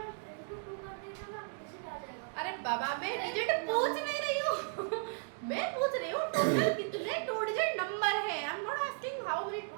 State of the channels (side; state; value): left; silent; 54 dB below the other